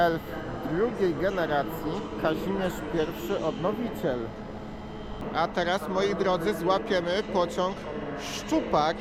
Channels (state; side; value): identical; both; correlation 1.00